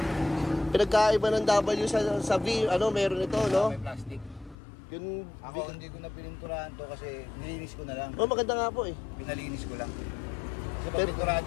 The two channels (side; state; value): right; drops out; at 4.5 s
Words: Pinagkaiba ng W sa V. Meron ito, no? May plastic. Yun, ako hindi ko na pininturahan to kasi nilinis ko na lang. Maganda nga po eh. Pinalinis ko lang. Kasi pag